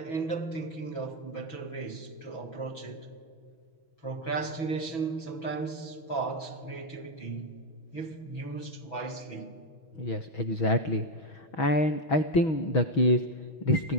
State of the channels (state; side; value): late; right; 6.1 ms